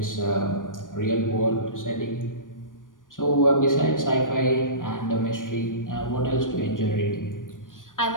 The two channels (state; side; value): late; right; 0.88 ms